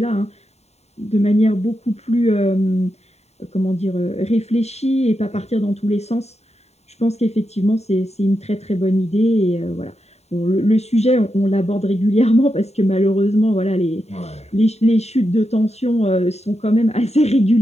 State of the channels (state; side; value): late; right; 0.31 ms